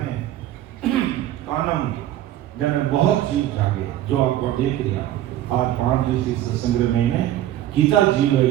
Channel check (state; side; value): quieter; left; 13.2 dB